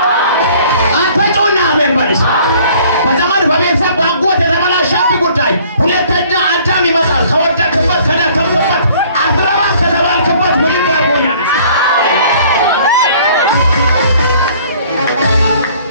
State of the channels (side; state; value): both; inverted; correlation -0.55